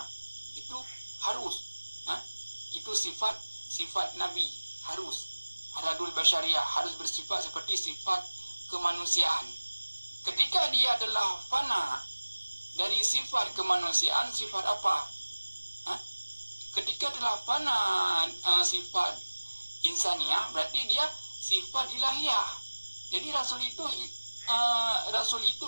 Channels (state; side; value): inverted; both; correlation -1.00